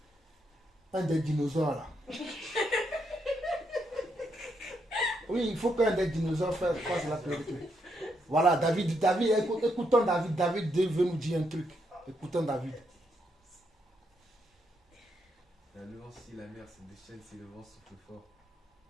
Un des dinosaures là. Oui, il faut qu'un des dinosaures fasse la clôture. Voilà, David, écoutons David. David veut nous dire un truc. Écoutons David. La nuance si la mer se déchaîne, si le vent souffle fort.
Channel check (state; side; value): normal; both; correlation 0.78